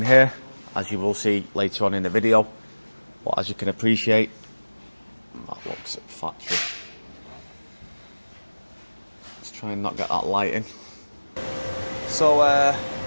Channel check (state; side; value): inverted; both; correlation -1.00